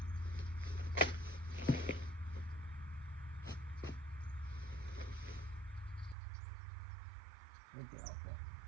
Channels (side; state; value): left; drops out; at 6.2 s